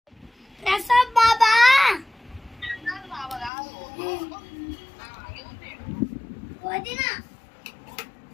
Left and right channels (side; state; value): right; drops out; at 3.5 s